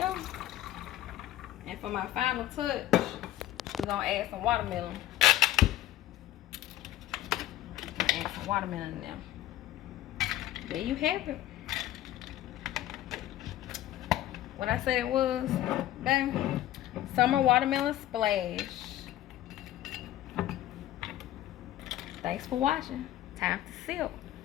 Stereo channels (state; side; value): quieter; right; 13.8 dB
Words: And for my final touch, we're gonna add some watermelon. Add some watermelon in there. There you have it. What I said it was, bang, Summer Watermelon Splash. Thanks for watching. Time to sip.